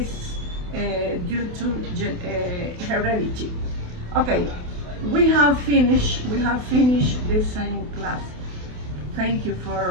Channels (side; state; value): left; late; 28 ms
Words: due to heredity. Okay, we have finished this science class. Thank you